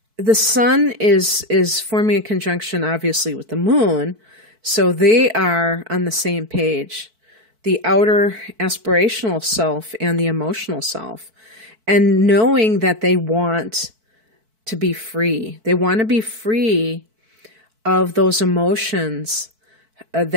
the sun is forming a conjunction, obviously, with the moon, so they are on the same page, the outer aspirational self and the emotional self, and knowing that they want to be free. They want to be free of those emotions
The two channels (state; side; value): late; left; 4.5 ms